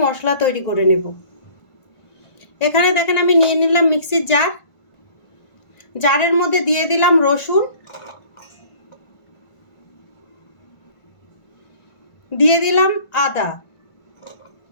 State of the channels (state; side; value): late; right; 1.4 ms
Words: মশলা তৈরি করে নেব। এখানে দেখেন আমি নিয়ে নিলাম মিক্সির জার। জারের মধ্যে দিয়ে দিলাম রসুন, দিয়ে দিলাম আদা,